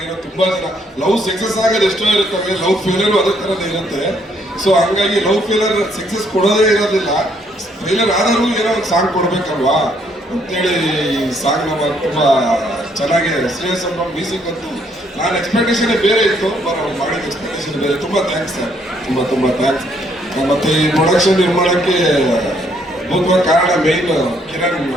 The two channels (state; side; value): normal; both; correlation 0.69